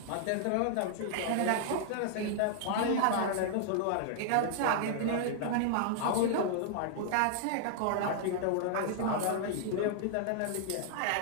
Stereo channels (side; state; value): both; different; correlation -0.01